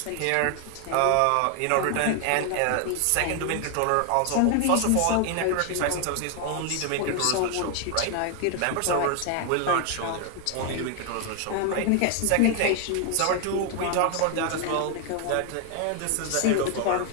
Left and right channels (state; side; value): different; both; correlation 0.00